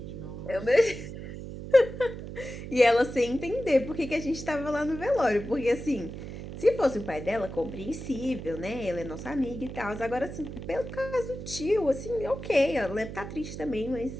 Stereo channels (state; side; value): noise; right; hum, 9 dB below the sound